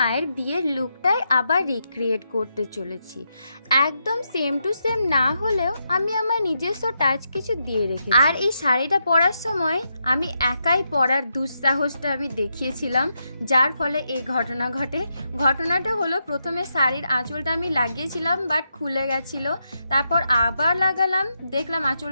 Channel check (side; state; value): both; inverted; correlation -0.83